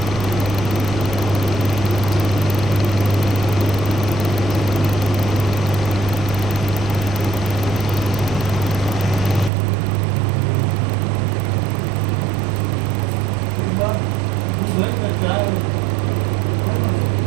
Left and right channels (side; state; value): left; drops out; at 9.5 s